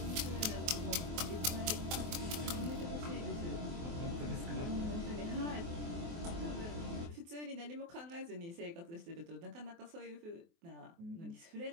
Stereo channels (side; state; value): left; late; 24 ms